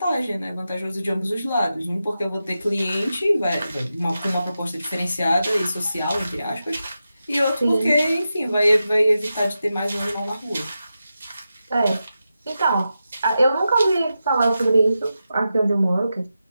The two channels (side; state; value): both; inverted; correlation -0.90